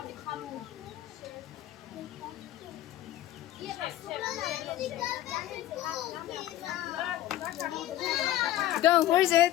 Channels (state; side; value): quieter; right; 13.6 dB